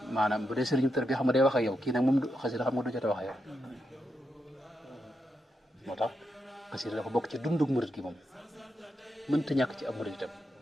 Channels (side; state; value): both; normal; correlation 0.84